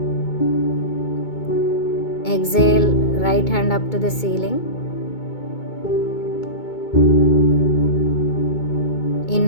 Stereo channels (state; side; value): late; right; 2.2 ms